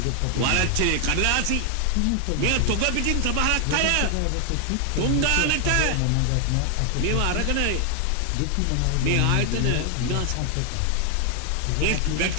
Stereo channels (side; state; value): both; different; correlation 0.00